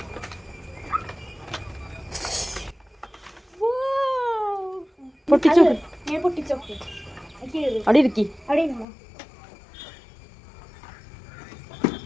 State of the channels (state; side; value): drops out; right; at 8.8 s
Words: പൊട്ടിച്ചോക്ക്. ഞാൻ പൊട്ടിച്ചോക്ക്. അവിടെ ഇരിക്കി. അവിടെ ഇരുന്നോ.